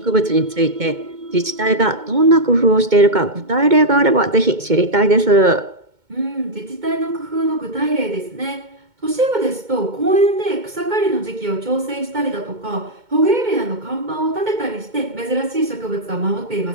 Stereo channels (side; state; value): left; late; 2.2 ms